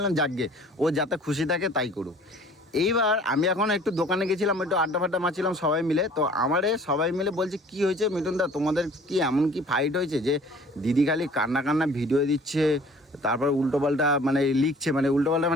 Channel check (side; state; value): both; normal; correlation 0.50